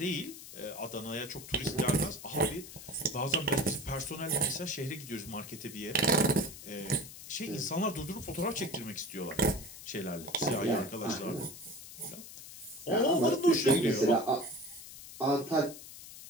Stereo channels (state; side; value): noise; left; hiss, 14 dB below the sound